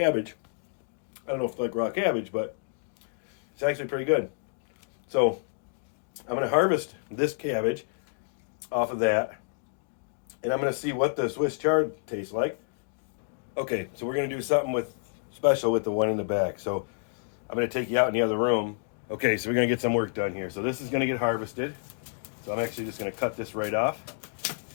I don't know if it's like raw cabbage, but it's actually pretty good. So I'm going to harvest this cabbage off of that, and I'm going to see what the Swiss chard tastes like. Okay, so we're going to do something special with the one in the back. So I'm going to take you out in the other room. Okay, so we're going to get some work done here. So this is going to get harvested. So I'm actually just going to cut this right off.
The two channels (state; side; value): silent; right; digital silence